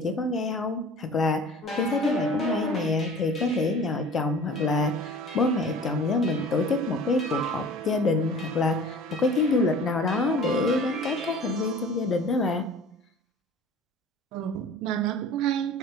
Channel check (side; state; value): both; normal; correlation 0.43